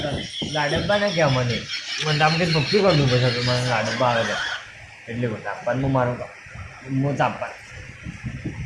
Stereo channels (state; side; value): identical; both; correlation 1.00